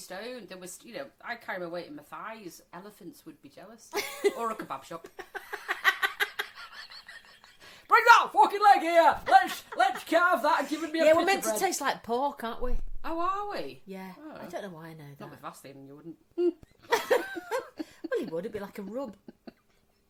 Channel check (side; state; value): both; identical; correlation 1.00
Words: there was, I carry my weight in my thighs. Elephants would be jealous. Or a kebab shop. Bring that fucking leg here! Let's carve that and give it me a Yeah, bit we're meant of bread. to taste like pork, aren't we? Oh, are we? Yeah. Oh. I don't know why I know that. Not with Vaseline, you wouldn't. Well, it would. It'd be like a rub.